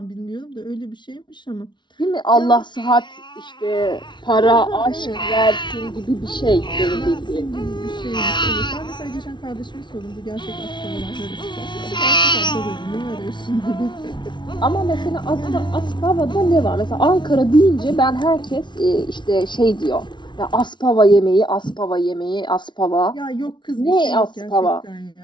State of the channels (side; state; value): right; late; 0.23 ms